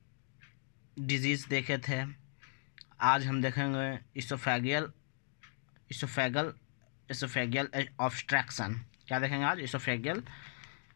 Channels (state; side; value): silent; right; digital silence